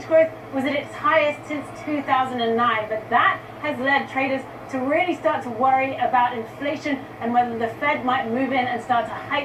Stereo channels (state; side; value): identical; both; correlation 1.00